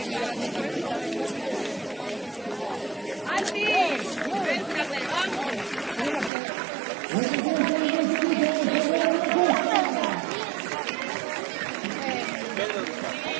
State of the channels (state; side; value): drops out; left; at 6.3 s